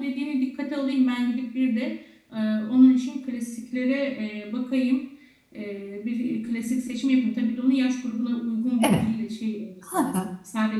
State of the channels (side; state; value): both; identical; correlation 1.00